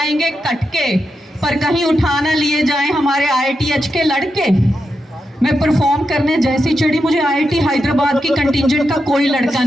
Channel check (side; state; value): both; normal; correlation 0.86